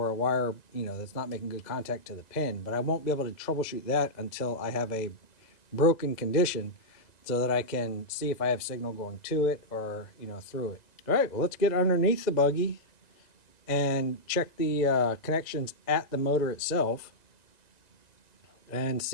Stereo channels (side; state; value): right; late; 2.0 ms